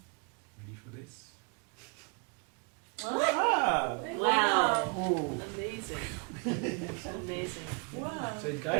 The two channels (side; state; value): left; quieter; 35.2 dB